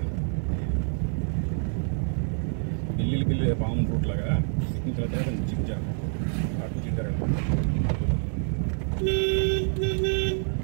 బిల్లి పాము రూట్ లాగా చిక్కారు అటు చిక్కారు.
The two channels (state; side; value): silent; left; 56 dB below the other